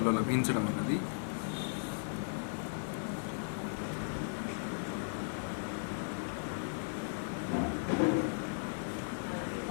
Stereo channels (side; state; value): right; silent; 53 dB below the other